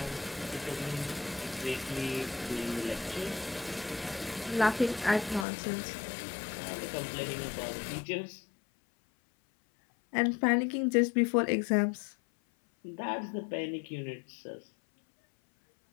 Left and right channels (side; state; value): right; drops out; at 5.5 s